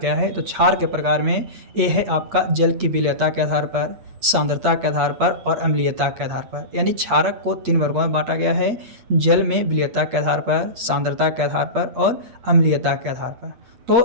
है? तो क्षार के प्रकार में ये है आपका जल की विलयता के आधार पर, सांद्रता के आधार पर और अम्लीयता के आधार पर। यानी क्षारक को 3 वर्गों में बांटा गया है, जल में विलयता के आधार पर, सांद्रता के आधार पर और अम्लीयता के आधार पर।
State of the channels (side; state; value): left; late; 8.5 ms